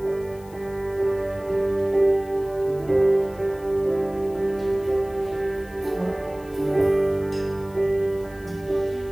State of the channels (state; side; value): noise; left; hiss, 25 dB below the sound